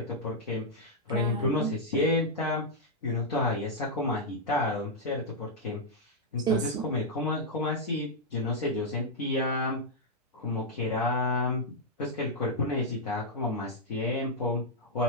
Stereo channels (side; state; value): both; normal; correlation -0.05